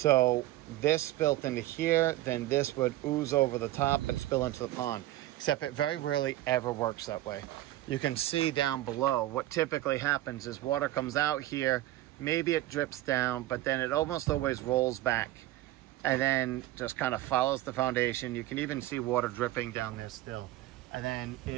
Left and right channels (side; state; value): left; quieter; 15.8 dB